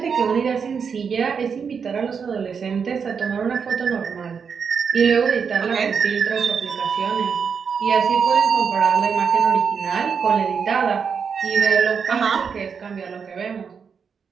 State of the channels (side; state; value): left; quieter; 6.3 dB